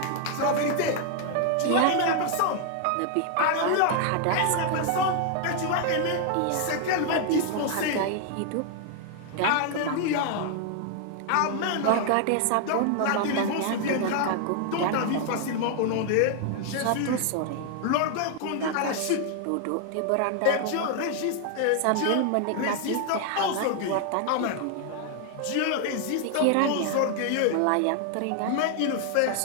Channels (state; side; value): different; both; correlation 0.00